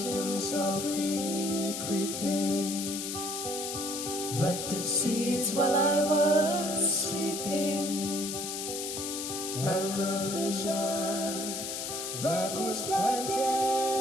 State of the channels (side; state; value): left; noise; hiss, 5 dB below the sound